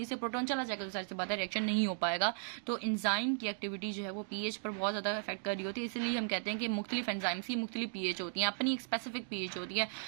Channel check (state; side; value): silent; left; digital silence